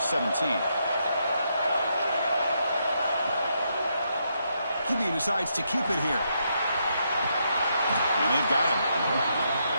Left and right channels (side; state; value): both; inverted; correlation -0.79